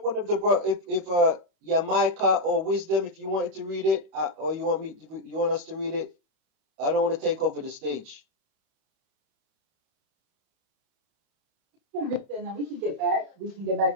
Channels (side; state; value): left; late; 31 ms